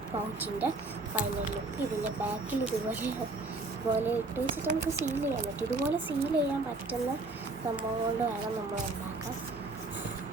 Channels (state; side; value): quieter; left; 3.3 dB